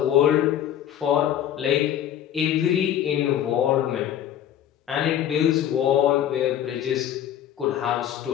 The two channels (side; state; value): right; quieter; 10.6 dB